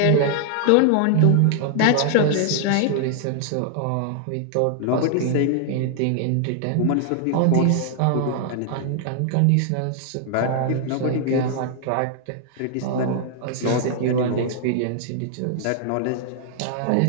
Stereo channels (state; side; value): different; both; correlation 0.00